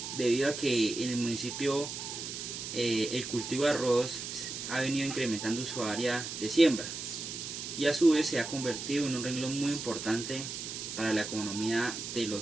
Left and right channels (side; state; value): right; noise; hiss, 7 dB below the sound